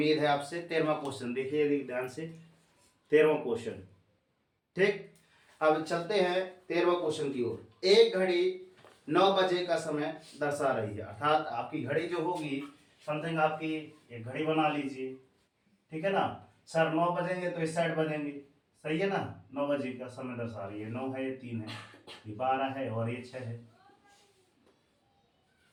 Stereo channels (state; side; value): identical; both; correlation 1.00